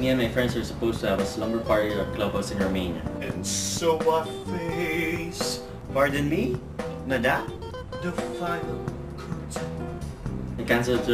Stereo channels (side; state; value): both; identical; correlation 1.00